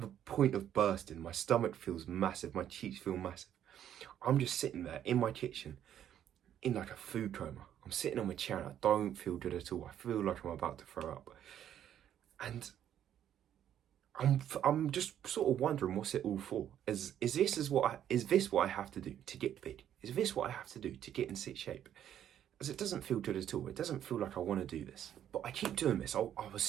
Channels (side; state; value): left; quieter; 10.4 dB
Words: the point of bursting. My stomach feels massive. My cheeks feel massive. I'm just sitting there in my kitchen in like a food coma. I'm sitting on my chair and I don't feel good at all. I feel like I'm about to throw up. And I'm just sort of wondering what's it all for? Is this what I have to do to get big? Is this what I have to do to get in sick shape? As it doesn't feel good at all. It doesn't feel like I want to do this. But I keep doing this. I was